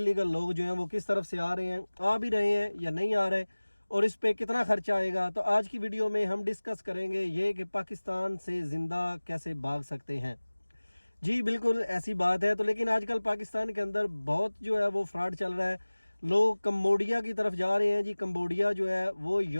लोग जो हैं वो किस तरफ से आ रहे हैं, आ भी रहे हैं या नहीं आ रहे, और इस पे कितना खर्चा आएगा। तो आज की वीडियो में हम डिस्कस करेंगे ये कि पाकिस्तान से ज़िंदा कैसे भाग सकते हैं। जी बिल्कुल ऐसी बात है। तो लेकिन आजकल पाकिस्तान के अंदर बहुत जो है वो फ्रॉड चल रहा है। लोग कम्बोडिया की तरफ जा रहे हैं। जी कम्बोडिया जो है वो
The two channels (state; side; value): inverted; both; correlation -1.00